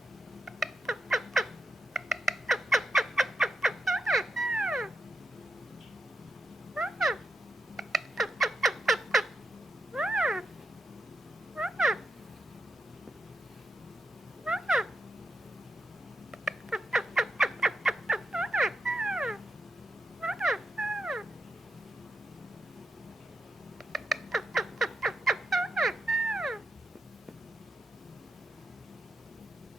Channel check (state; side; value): normal; both; correlation 0.85